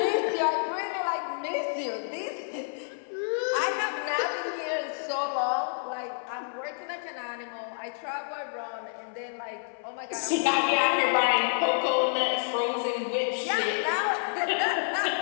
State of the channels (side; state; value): right; silent; 56 dB below the other